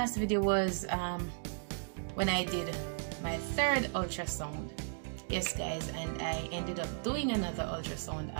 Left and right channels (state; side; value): silent; left; digital silence